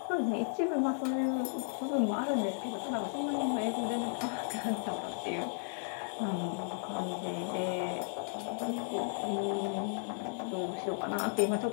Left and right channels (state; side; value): silent; right; digital silence